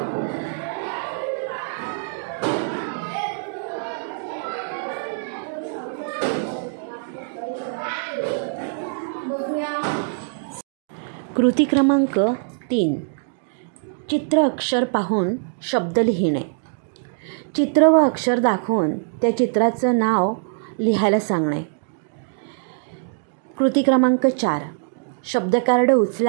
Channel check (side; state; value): left; silent; digital silence